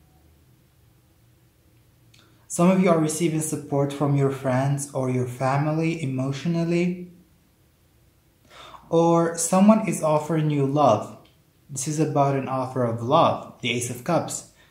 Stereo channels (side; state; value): both; identical; correlation 1.00